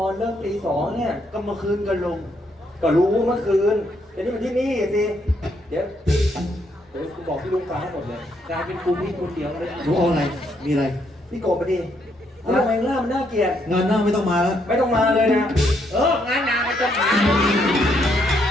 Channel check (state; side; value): normal; both; correlation 0.74